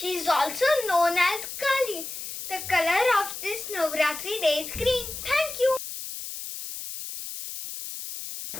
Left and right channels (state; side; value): noise; left; hiss, 8 dB below the sound